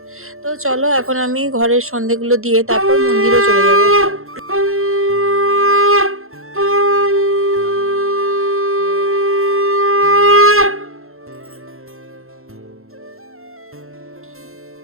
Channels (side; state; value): left; late; 0.62 ms